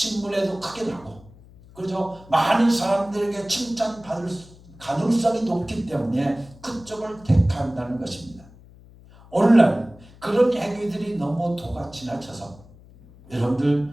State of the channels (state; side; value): noise; left; hum, 23 dB below the sound